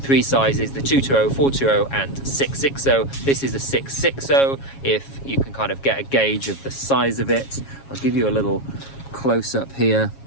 three sizes: the 220, 420 and 660. This is a 660, if you can kind of get a gauge of the size of it. I'll give you a little close-up here.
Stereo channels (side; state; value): right; late; 7.3 ms